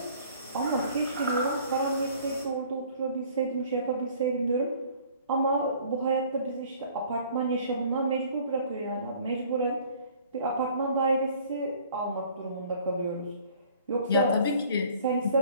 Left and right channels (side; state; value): both; inverted; correlation -0.53